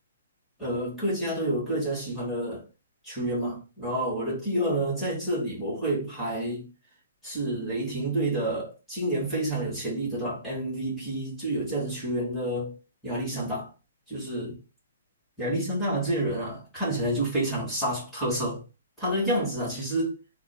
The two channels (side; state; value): both; inverted; correlation -0.40